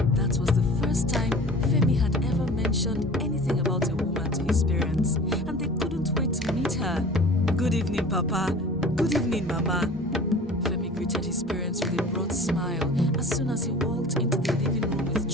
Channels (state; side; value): normal; both; correlation 0.42